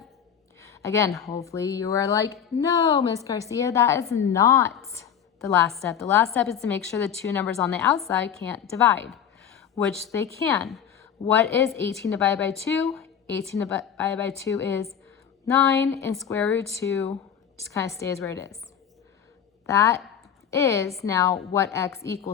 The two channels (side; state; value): right; quieter; 8.3 dB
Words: Again, hopefully you are like, no, Miss Garcia, that is not the last step. The last step is to make sure the two numbers on the outside can't divide, which they can. What is 18 divided by 2? 18 divided by 2 is 9, and square root 2 just kind of stays where it is. That is now what x